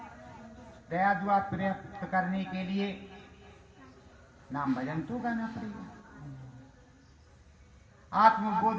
दया दुआ प्राप्त करने के लिए नाम भजन तो गाना पड़ेगा। आत्मबोध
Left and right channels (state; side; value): identical; both; correlation 1.00